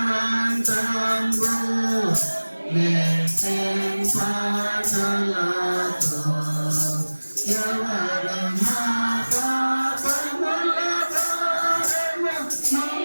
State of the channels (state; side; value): inverted; both; correlation -1.00